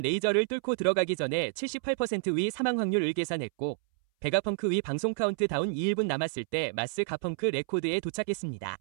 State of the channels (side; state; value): left; silent; 58 dB below the other